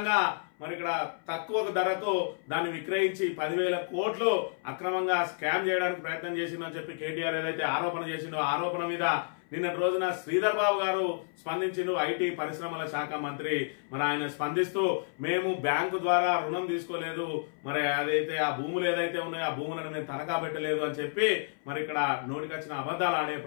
మరి ఇక్కడ తక్కువ ధరకు దాన్ని విక్రయించి 10,000 కోట్లు అక్రమంగా స్కామ్ చేయడానికి ప్రయత్నం చేసిందని చెప్పి కేటీఆర్ ఏదైతే ఆరోపణ చేసిండో ఆరోపణ మీద నిన్నటి రోజున శ్రీధర్ బాబు గారు స్పందించిండు. ఐటీ పరిశ్రమల శాఖ మంత్రి మరి ఆయన స్పందిస్తూ మేము బ్యాంకు ద్వారా రుణం తీసుకోలేదు, మరి అదైతే ఆ భూములు ఏదైతే ఉన్నాయో ఆ భూములను మేము తనఖా పెట్టలేదు అని చెప్పి మరి ఇక్కడ నోటికొచ్చిన అబద్ధాలు ఆడే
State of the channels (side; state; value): right; silent; 58 dB below the other